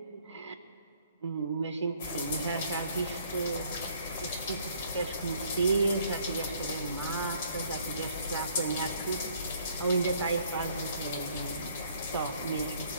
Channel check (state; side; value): inverted; both; correlation -0.61